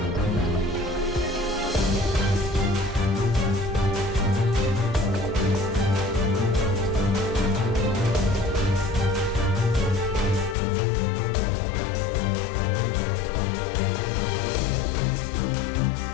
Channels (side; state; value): right; drops out; at 10.6 s